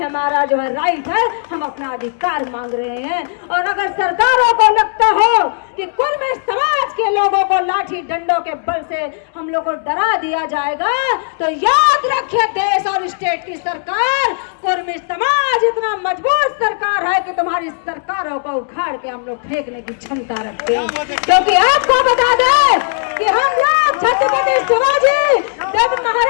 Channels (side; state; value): right; silent; digital silence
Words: जो है राइट है, हम अपना अधिकार मांग रहे हैं। और अगर सरकारों को लगता हो कि कुर्मी समाज के लोगों को लाठी डंडों के बल से हम लोग को डरा दिया जाएगा, तो याद रखिए देश और स्टेट की सरकार, कुर्मी समाज इतना मजबूत सरकार है कि तुम्हारी सरकारों को उखाड़ के हम लोग फेंकने की क्षमता रखते हैं। क्योंकि आपको बता दें कि हम लोग छत्रपति शिवाजी जब